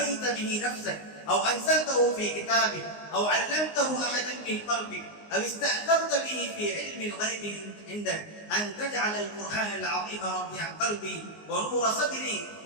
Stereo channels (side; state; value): right; late; 19 ms